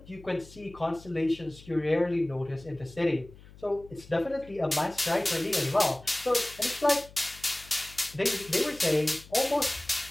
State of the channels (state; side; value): noise; left; hum, 21 dB below the sound